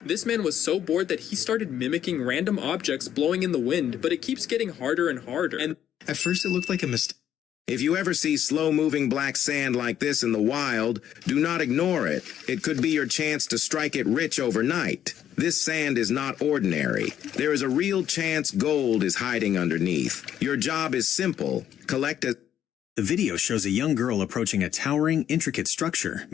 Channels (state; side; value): quieter; right; 10.3 dB